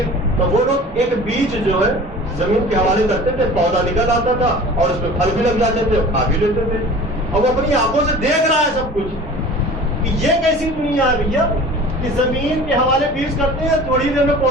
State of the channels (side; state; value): both; normal; correlation 0.41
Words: تو وہ لوگ ایک بیج جو ہے زمین کے حوالے کرتے تھے, پودا نکل آتا تھا اور اس میں پھل بھی لگ جاتے تھے, کھا بھی لیتے تھے. اور وہ اپنی آنکھوں سے دیکھ رہا ہے سب کچھ کہ یہ کیسی دنیا ہے بھیا کہ زمین کے حوالے بیج کرتے ہیں, تھوڑی دیر میں